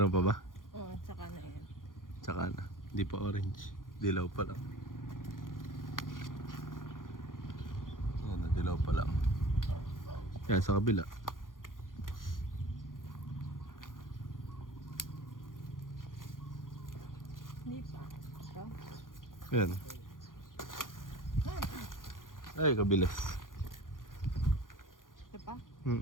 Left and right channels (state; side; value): late; right; 0.90 ms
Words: pa ba? Oo, tsaka na yan. Tsaka na. Hindi pa orange. Dilaw pa lang. Yan, dilaw pa lang. Yan, sa kabila. Hindi pa. Ito? Yan. Ay, kabilis. Ito pa?